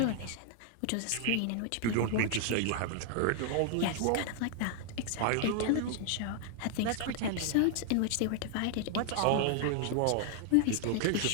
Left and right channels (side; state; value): both; different; correlation 0.00